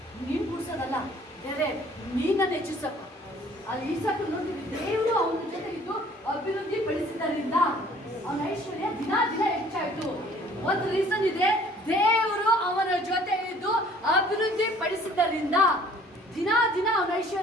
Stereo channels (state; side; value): normal; both; correlation 0.55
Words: ನೀನು ಕೂಡಿಸೋದಲ್ಲ, ಬೇರೆ ನೀನನ್ನು ಹೆಚ್ಚಿಸಪ್ಪ. ಅಲ್ಲಿ ಈಸಾಕು ನೋಡಿದ್ವಿ, ದೇವರು ಅವನ ಜೊತೆಗಿದ್ದು ಅಭಿವೃದ್ಧಿ ಪಡಿಸಿದ್ದರಿಂದ ಅವನ ಐಶ್ವರ್ಯ ದಿನ ದಿನ ಹೆಚ್ಚಾಯಿತು. ಒಂದು ರೀಸನ್ ಇದೆ, ದೇವರು ಅವನ ಜೊತೆ ಇದ್ದು ಅಭಿವೃದ್ಧಿ ಪಡಿಸಿದ್ದರಿಂದ ದಿನ ದಿನ ಅವನ